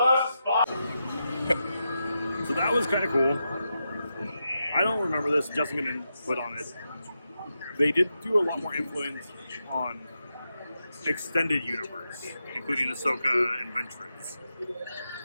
So that was kind of cool. I don't remember this. Justin didn't put on it. They did do a lot more influence on extended universe, including Ahsoka and Ventress.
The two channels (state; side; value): inverted; both; correlation -0.87